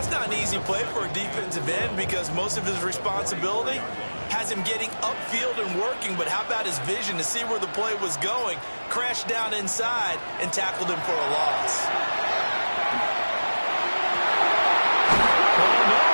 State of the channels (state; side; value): inverted; both; correlation -1.00